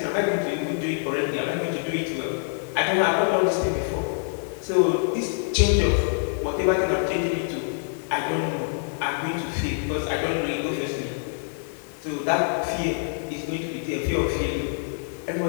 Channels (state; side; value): silent; right; 61 dB below the other